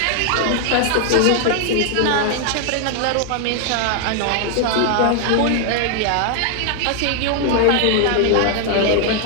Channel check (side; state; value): both; different; correlation 0.00